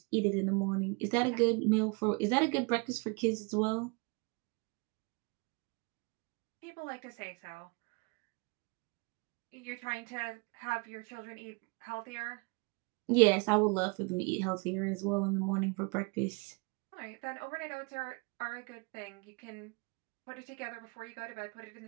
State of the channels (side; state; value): left; quieter; 31.3 dB